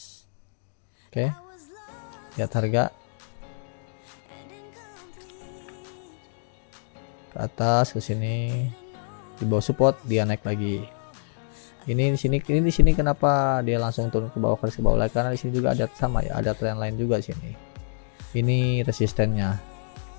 Oke. Lihat harga ke atas, ke sini, di bawah support dia naik lagi. Ini di sini kenapa dia langsung turun ke bawah, ke bawah lagi, karena di sini juga ada sama ya, ada trend line juga sini. Ini resistennya,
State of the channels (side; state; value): right; silent; digital silence